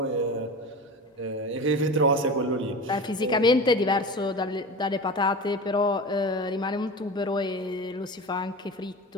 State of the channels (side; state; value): both; normal; correlation 0.31